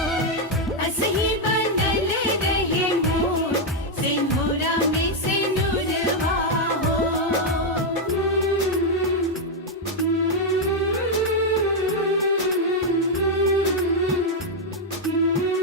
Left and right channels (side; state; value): both; normal; correlation 0.00